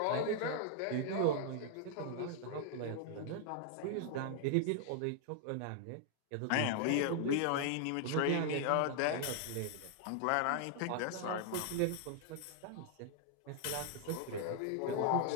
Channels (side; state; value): both; different; correlation 0.00